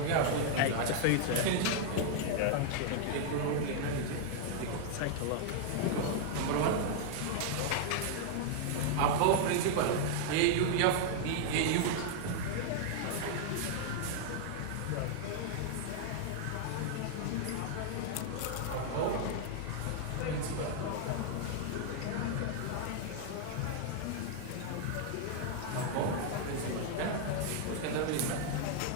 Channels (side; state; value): both; different; correlation -0.01